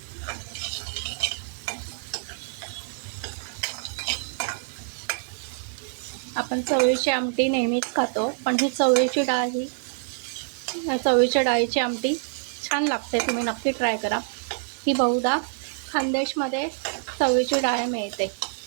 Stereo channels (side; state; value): left; silent; 61 dB below the other